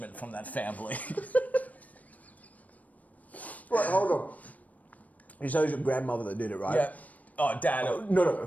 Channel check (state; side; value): late; right; 0.072 ms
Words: from that family. Wait, hold on. You say it was your grandmother that did it, right? Yeah. Oh, Dad. Oh, no.